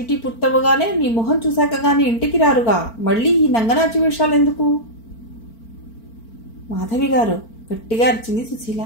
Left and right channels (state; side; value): late; right; 4.4 ms